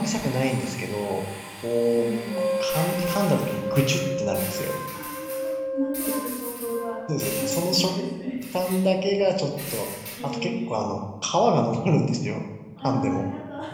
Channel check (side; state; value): both; identical; correlation 1.00